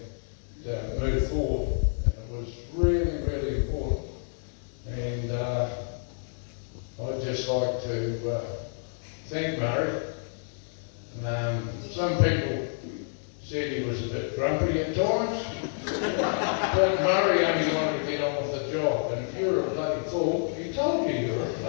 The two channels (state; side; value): silent; right; digital silence